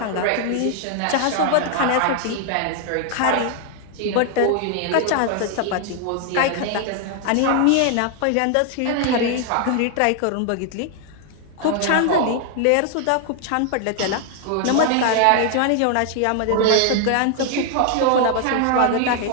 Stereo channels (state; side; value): different; both; correlation 0.00